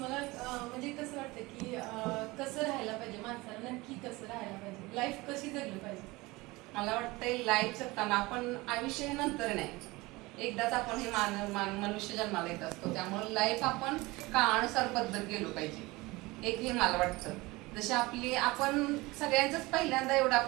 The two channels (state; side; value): quieter; left; 22.0 dB